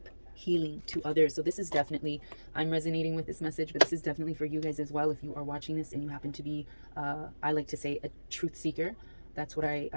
healing to others. So this is definitely, I'm resonating with this message, but this is definitely for you guys as well. If you are watching this and you happen to be, I like to say, a truth seeker, that's what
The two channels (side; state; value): both; inverted; correlation -1.00